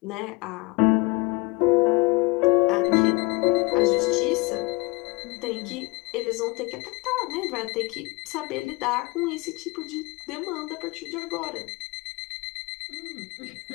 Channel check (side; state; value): right; quieter; 26.1 dB